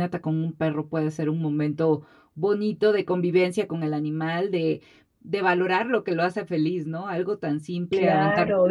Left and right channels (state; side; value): identical; both; correlation 1.00